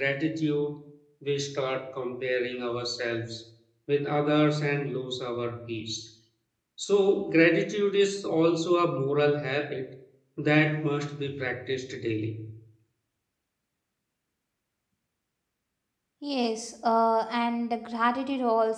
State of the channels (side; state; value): both; identical; correlation 1.00